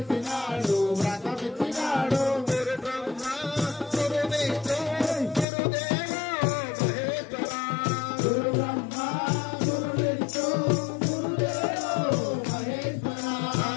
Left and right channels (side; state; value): right; drops out; at 5.5 s